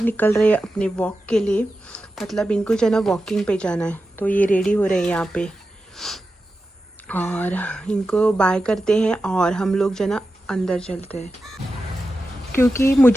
निकल रहे हैं अपने वॉक के लिए। मतलब इनको जो है ना वॉकिंग पे जाना है, तो ये रेडी हो रहे हैं यहाँ पे और इनको बाय करते हैं और हम लोग जो है ना अंदर चलते हैं, क्योंकि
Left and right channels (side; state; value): both; normal; correlation 0.91